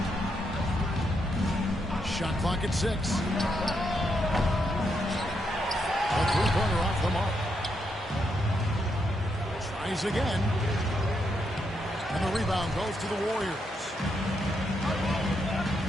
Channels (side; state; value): both; normal; correlation 0.80